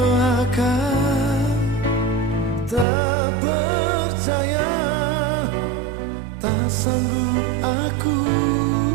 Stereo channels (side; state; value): left; drops out; at 2.9 s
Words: tak percaya, tak sanggup aku